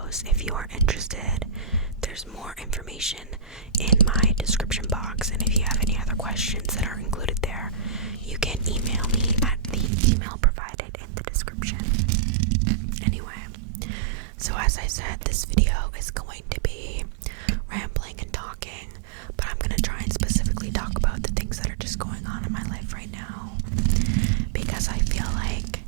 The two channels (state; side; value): drops out; left; at 9.9 s